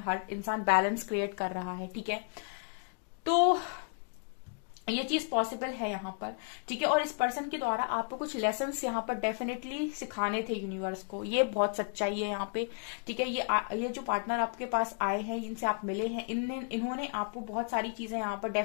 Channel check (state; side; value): quieter; right; 39.5 dB